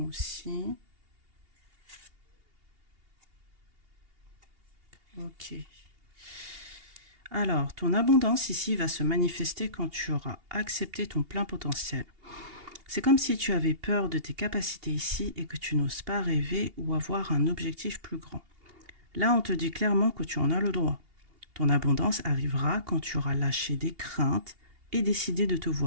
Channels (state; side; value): late; left; 2.8 ms